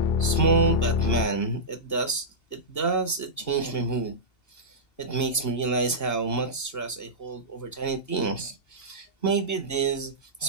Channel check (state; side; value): late; right; 2.7 ms